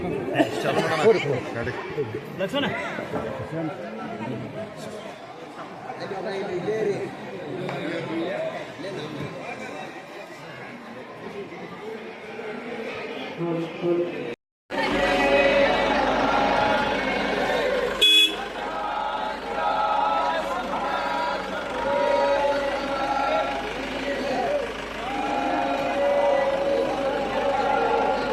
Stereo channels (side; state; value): both; identical; correlation 1.00